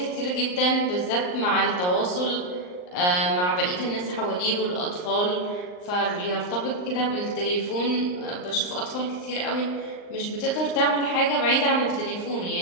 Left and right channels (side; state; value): right; late; 39 ms